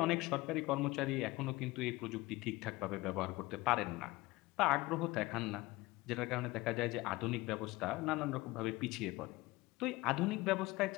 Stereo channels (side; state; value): right; quieter; 20.7 dB